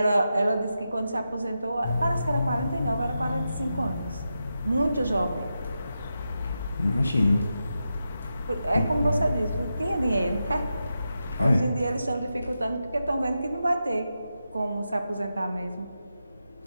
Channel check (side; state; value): both; inverted; correlation -0.88